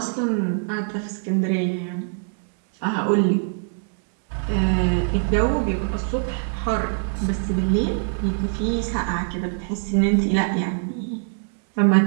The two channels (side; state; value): left; silent; digital silence